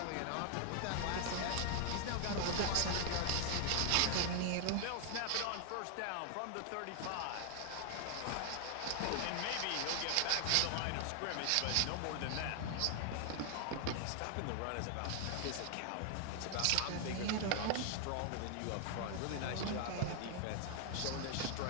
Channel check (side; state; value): both; different; correlation 0.00